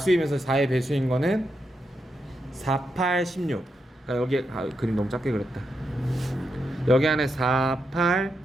4의 배수인 거는 4, 8, 16. 그러니까 여기 그림 너무 작게 그렸다. 여기 안에 4, 8,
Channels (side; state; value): both; normal; correlation 0.84